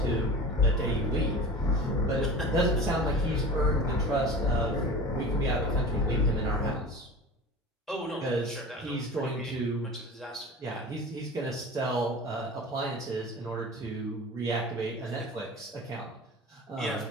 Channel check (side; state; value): both; normal; correlation 0.35